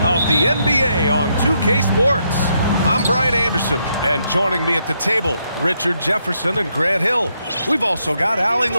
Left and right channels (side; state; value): both; inverted; correlation -0.78